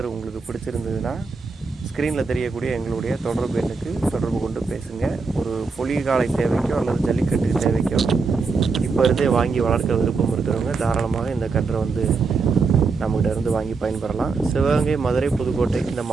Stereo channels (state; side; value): quieter; left; 4.5 dB